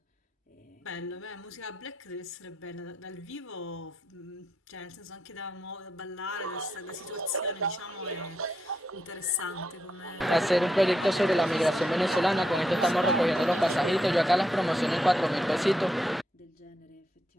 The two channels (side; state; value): both; normal; correlation 0.81